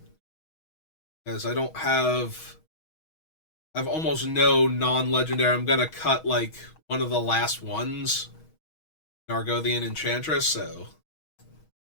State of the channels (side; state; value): right; late; 6.3 ms